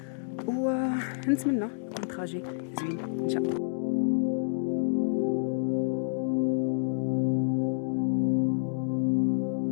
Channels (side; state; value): right; silent; digital silence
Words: ونتمنى يكون تراجي زوين ان شاء الله.